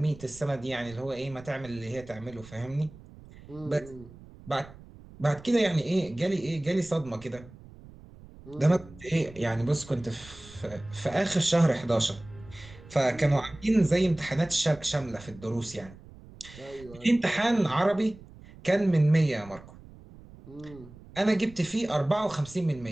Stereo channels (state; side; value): noise; right; rumble, 20 dB below the sound